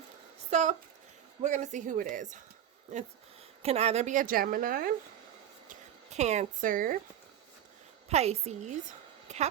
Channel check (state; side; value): quieter; left; 10.4 dB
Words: So we're going to see who it is. It can either be a Gemini, Cancer, Pisces,